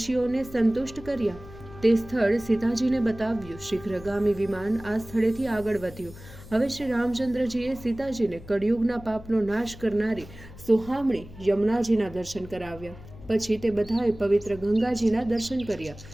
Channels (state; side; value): noise; left; hum, 17 dB below the sound